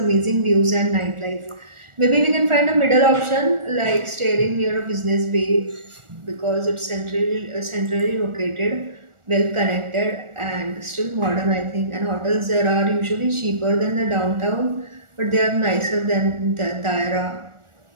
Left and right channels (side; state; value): left; late; 1.4 ms